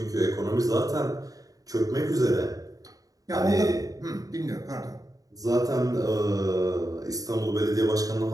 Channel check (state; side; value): late; left; 0.17 ms